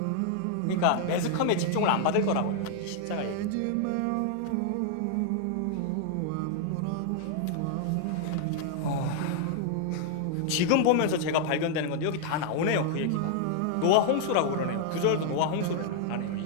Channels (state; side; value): different; both; correlation 0.00